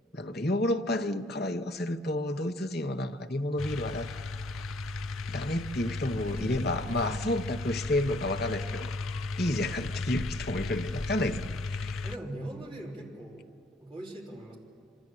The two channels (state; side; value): normal; both; correlation 0.62